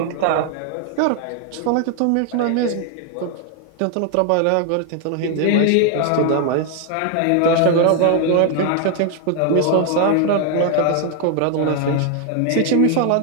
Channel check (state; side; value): different; both; correlation 0.00